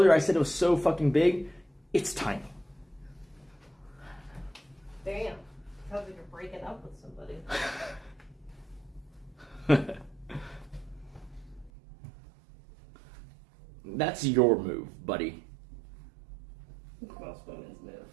I said it was so fucking big. It's tiny. breaking up with somebody. That's your move, buddy. Most women's move.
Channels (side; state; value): left; drops out; at 11.7 s